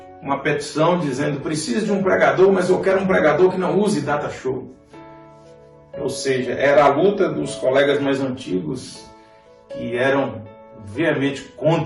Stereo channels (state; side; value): identical; both; correlation 1.00